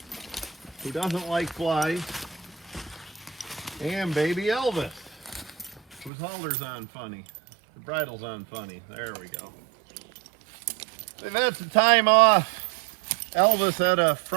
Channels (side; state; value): left; drops out; at 6.1 s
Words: who doesn't like flies, and baby Elvis, whose halter's on funny. The bridle's on funny. There we go. They've had some time off. Elvis had a